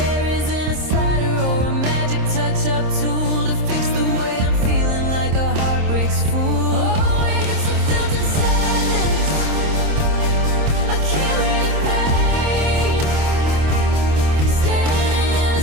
isn't a slider or a magic touch-up tool to fix the way I'm feeling like a heartbreak's fool. Oh, it's a filtered sadness, a curated pain, standing in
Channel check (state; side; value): late; left; 26 ms